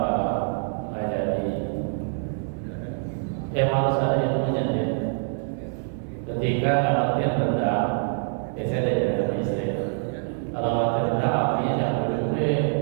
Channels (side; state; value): left; silent; 58 dB below the other